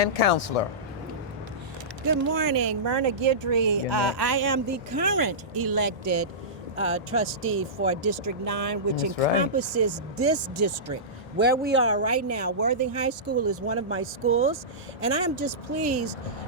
counselor. Good morning, Myrna Guidry. Good morning. I am the current elected trustee for District 9, which That's right. encompasses this district where we are right now. Worthing High School is one of my schools, and I am just pleased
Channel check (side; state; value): both; normal; correlation -0.19